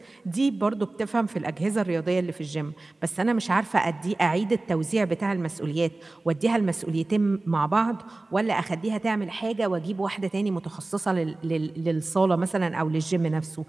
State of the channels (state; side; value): quieter; left; 3.0 dB